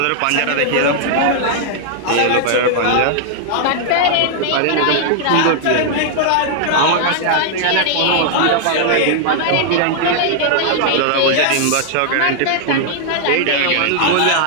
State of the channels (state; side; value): different; both; correlation -0.01